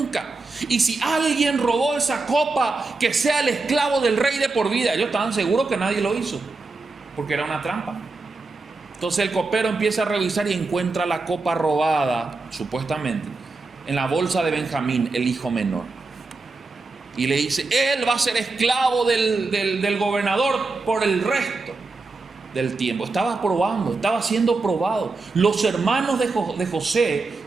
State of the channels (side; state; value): left; quieter; 3.7 dB